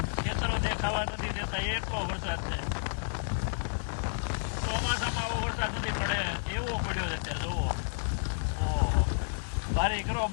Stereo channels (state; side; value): silent; right; digital silence